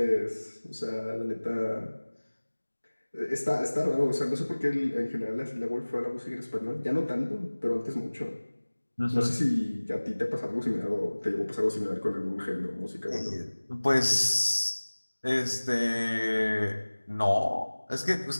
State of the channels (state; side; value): inverted; both; correlation -1.00